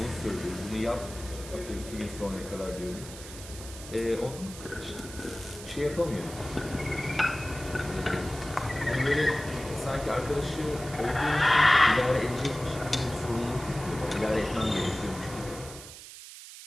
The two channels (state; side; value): noise; right; hiss, 14 dB below the sound